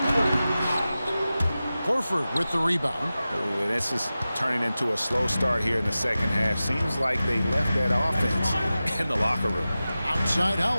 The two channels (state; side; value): inverted; both; correlation -0.95